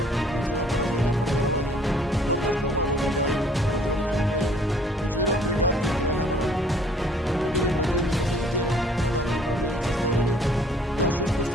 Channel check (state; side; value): normal; both; correlation 0.58